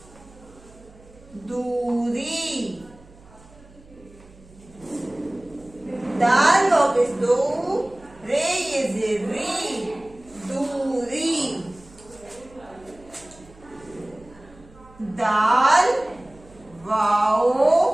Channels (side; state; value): right; noise; hum, 24 dB below the sound